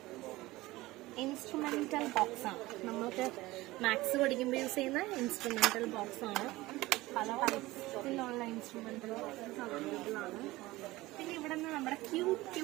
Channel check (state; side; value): quieter; left; 19.1 dB